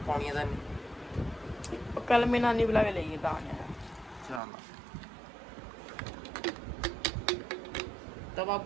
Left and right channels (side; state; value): left; drops out; at 4.4 s